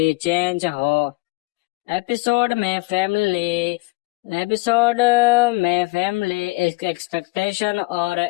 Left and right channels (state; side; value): quieter; right; 24.3 dB